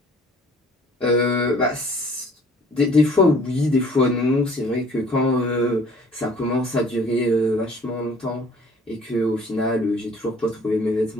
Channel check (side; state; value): both; normal; correlation 0.54